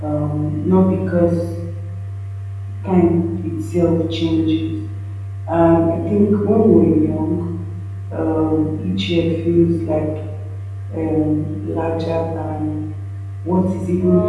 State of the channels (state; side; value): identical; both; correlation 1.00